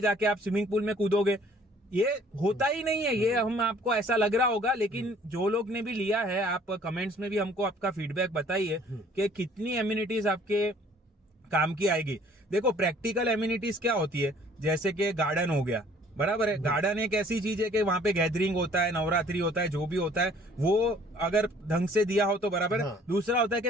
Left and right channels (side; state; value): both; normal; correlation 0.56